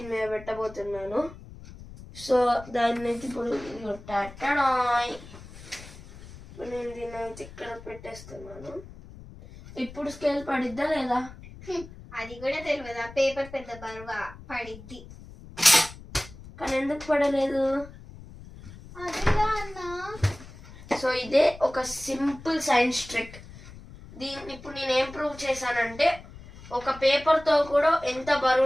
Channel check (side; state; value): left; noise; rumble, 17 dB below the sound